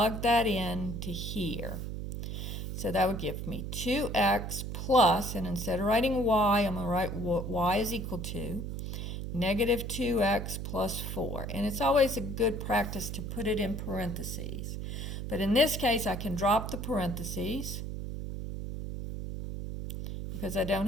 that in to here. So that would give me 2x plus, and instead of writing y, I'm going to write what y is equal to negative 2x plus 4. And it's always a good practice to put it in parentheses. But in this case, I can drop the parentheses because I don't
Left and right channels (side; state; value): right; noise; hum, 5 dB below the sound